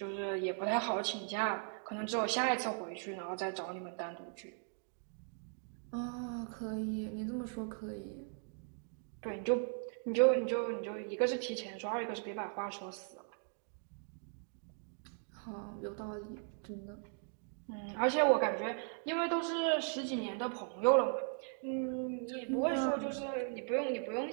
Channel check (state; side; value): silent; left; 52 dB below the other